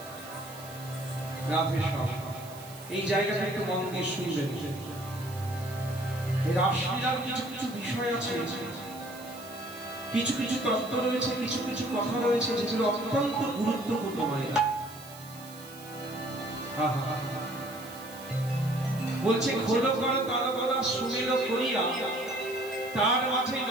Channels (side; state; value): right; noise; hiss, 18 dB below the sound